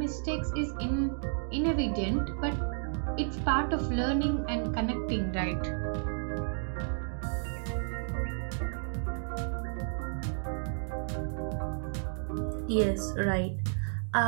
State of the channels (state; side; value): silent; left; digital silence